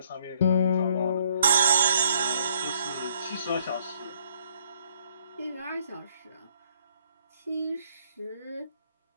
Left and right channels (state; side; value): inverted; both; correlation -0.66